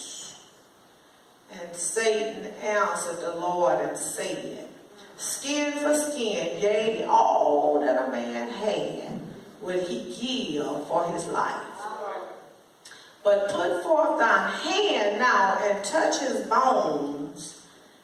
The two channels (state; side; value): identical; both; correlation 1.00